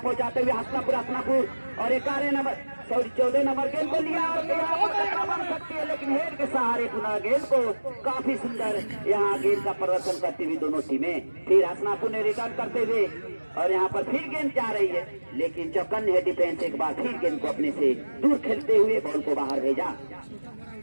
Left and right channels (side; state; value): both; inverted; correlation -1.00